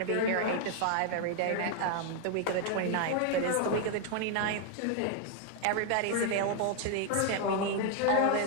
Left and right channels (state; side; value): different; both; correlation 0.00